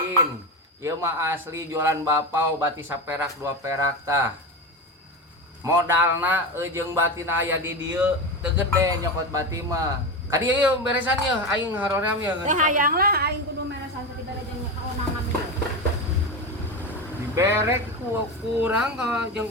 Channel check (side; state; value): both; normal; correlation 0.19